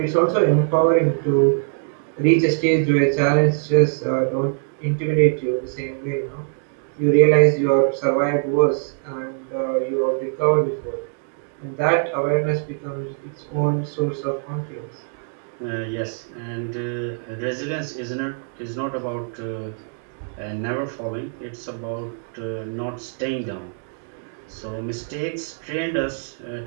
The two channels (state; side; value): silent; left; 64 dB below the other